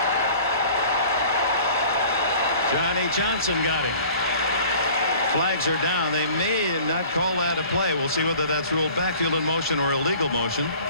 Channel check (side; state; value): both; inverted; correlation -0.47